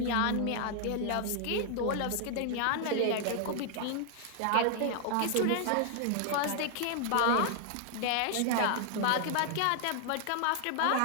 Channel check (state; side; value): different; both; correlation 0.00